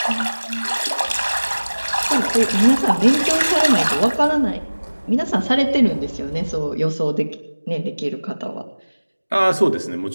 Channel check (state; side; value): inverted; both; correlation -1.00